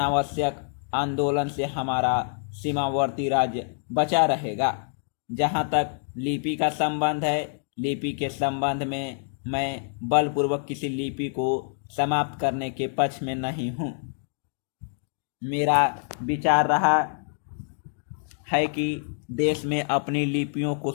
आंदोलन से हमारा सीमावर्ती राज्य बचा रहेगा। जहाँ तक लिपि का संबंध है, लिपि के संबंध में मैं बलपूर्वक किसी लिपि को समाप्त करने के पक्ष में नहीं हूँ। मेरा विचार रहा है कि देश में अपनी लिपियों को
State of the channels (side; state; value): right; silent; digital silence